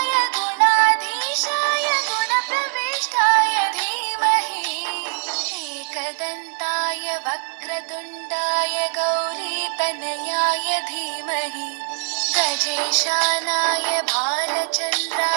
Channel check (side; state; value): left; silent; digital silence